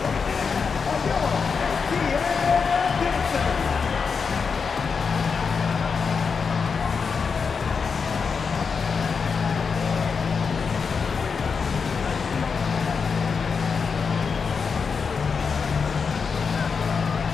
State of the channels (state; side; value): quieter; right; 5.5 dB